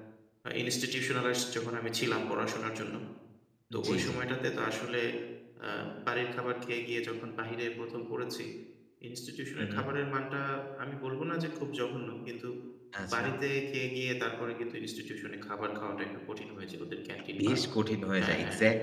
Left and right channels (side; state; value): both; identical; correlation 1.00